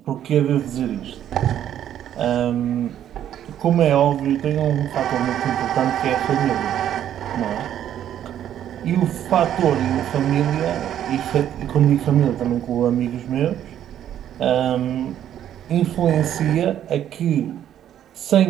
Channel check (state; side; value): quieter; left; 10.7 dB